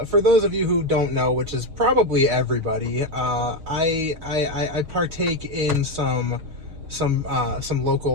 those of you who don't know, which is probably everybody, I partake in some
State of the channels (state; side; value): late; left; 6.4 ms